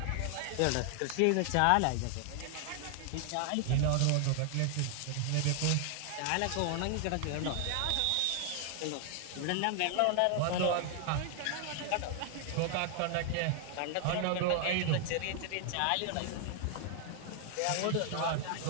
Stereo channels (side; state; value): both; different; correlation 0.00